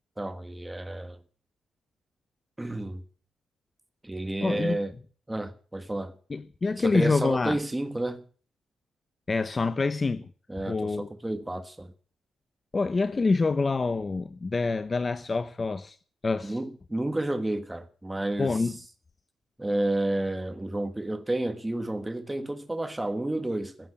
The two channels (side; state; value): both; normal; correlation 0.95